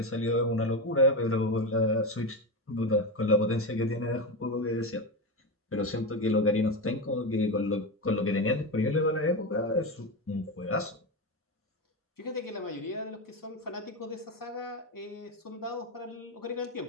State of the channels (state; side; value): normal; both; correlation 0.16